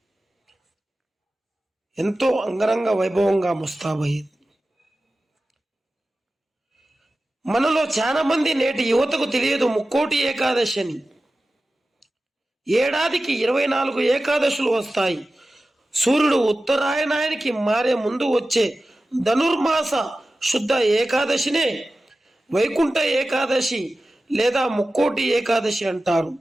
ఎంతో అంగరంగ వైభవంగా ముస్తాబయ్యింది. మనలో చాలా మంది నేటి యువతకు తెలియదు ముక్కోటి ఏకాదశి అని. ఏడాదికి 24 ఏకాదశులు వస్తాయి. సూర్యుడు ఉత్తరాయణానికి మారే ముందు వచ్చే ధనుర్మాస శుద్ధ ఏకాదశినే వైకుంఠ ఏకాదశి లేదా ముక్కోటి ఏకాదశి అంటారు.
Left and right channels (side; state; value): both; normal; correlation 0.95